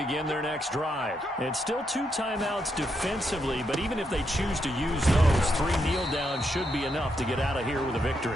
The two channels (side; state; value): both; normal; correlation 0.80